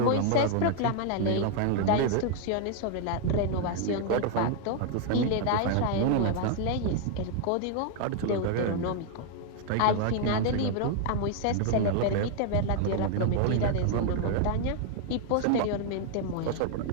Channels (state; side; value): different; both; correlation 0.00